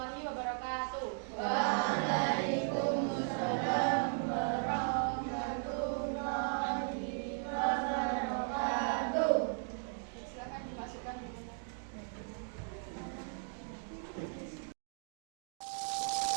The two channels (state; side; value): silent; left; 53 dB below the other